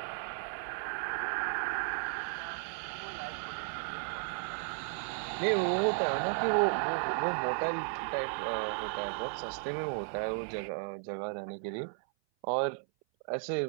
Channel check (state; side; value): silent; left; 55 dB below the other